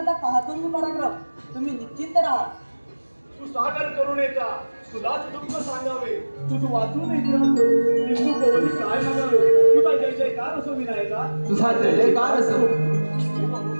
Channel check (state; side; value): inverted; both; correlation -1.00